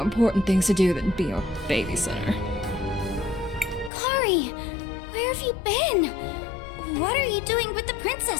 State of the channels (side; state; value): right; drops out; at 3.9 s